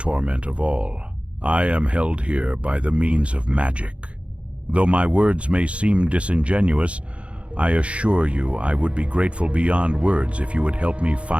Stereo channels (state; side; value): late; left; 0.061 ms